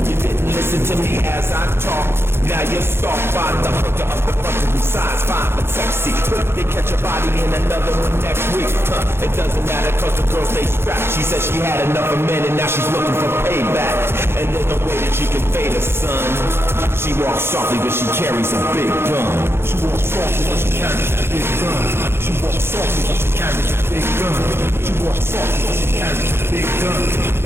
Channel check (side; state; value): left; late; 0.12 ms